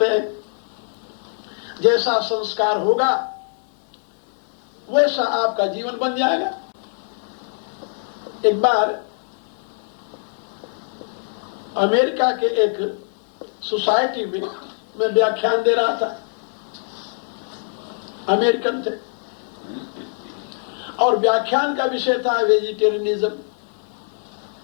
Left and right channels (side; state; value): right; silent; digital silence